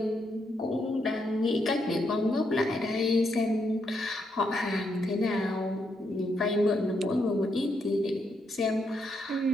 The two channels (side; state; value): both; normal; correlation 0.78